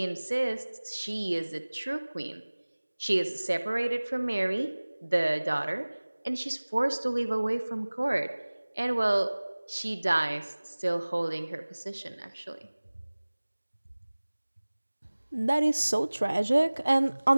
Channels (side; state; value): both; inverted; correlation -1.00